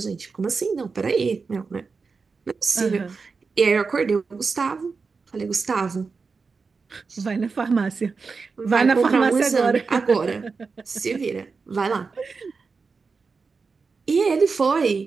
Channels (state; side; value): quieter; left; 4.7 dB